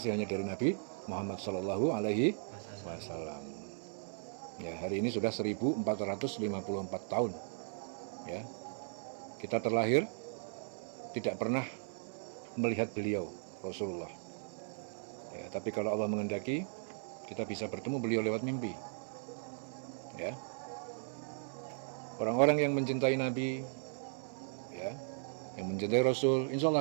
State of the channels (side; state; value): left; silent; digital silence